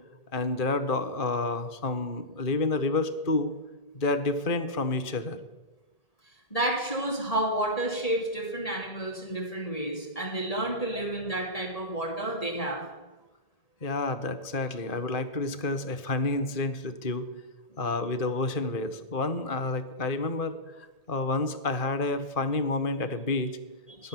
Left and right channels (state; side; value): late; right; 1.8 ms